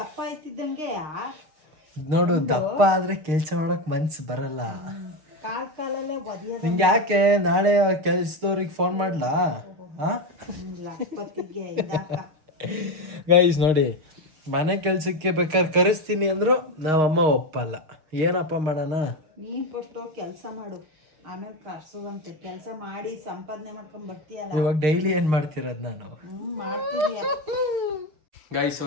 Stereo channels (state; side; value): late; left; 6.4 ms